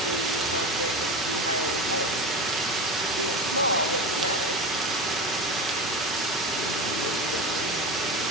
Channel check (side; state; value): both; normal; correlation 0.25